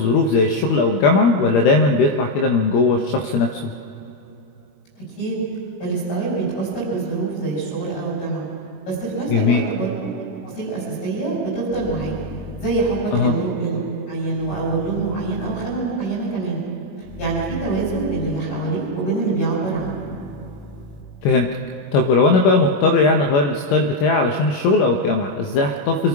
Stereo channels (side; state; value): right; late; 21 ms